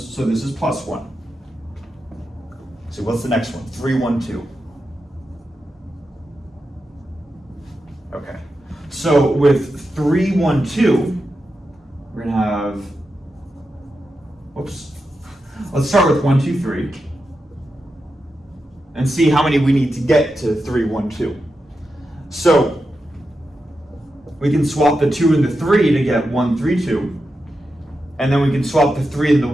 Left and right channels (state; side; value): normal; both; correlation 0.89